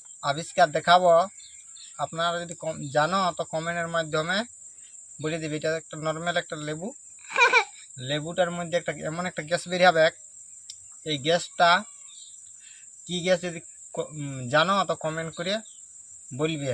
আবিষ্কার দেখাবো, আপনারা যদি জানো তো কমেন্টের মাধ্যমে বলে দিবে। এটা একটা নর্মাল একটা লেবু, লেবুটার মধ্যে একটা এমন একটা গ্যাস বের হবে। এই গ্যাসটা কি গ্যাস যদি জানো তো কমেন্ট করে বলবে,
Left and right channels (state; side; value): identical; both; correlation 1.00